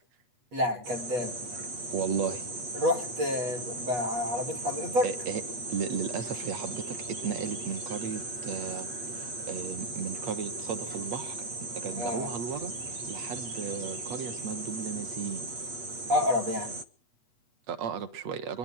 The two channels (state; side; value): late; left; 8.3 ms